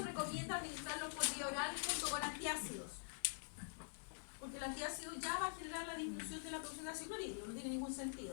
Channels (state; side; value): silent; right; digital silence